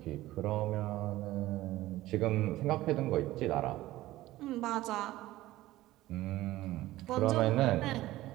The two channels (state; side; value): quieter; left; 16.4 dB